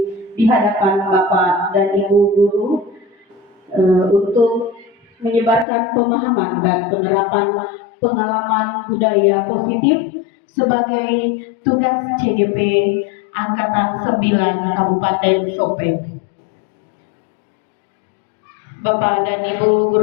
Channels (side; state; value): right; drops out; at 5.7 s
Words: di hadapan Bapak dan Ibu guru untuk menyebarkan pemahaman dan penerapan pengalaman budaya positif sebagai tugas CGP Angkatan 9 Kabupaten Sopeng. Bapak dan Ibu